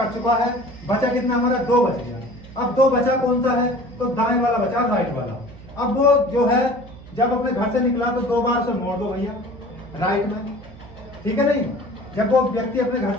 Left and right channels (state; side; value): noise; right; hum, 18 dB below the sound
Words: चुका है, बचा कितना हमारा 2 बच गया। अब 2 बचा कौन सा है, तो दाएं वाला बचा, राइट वाला। अब वो जो है जब अपने घर से निकला तो 2 बार उसे मोड़ दो भैया राइट में, ठीक है नहीं। जब वो व्यक्ति अपने घर